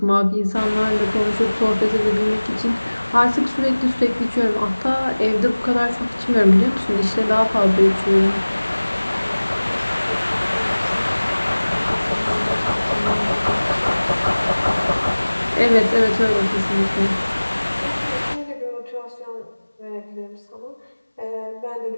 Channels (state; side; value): inverted; both; correlation -1.00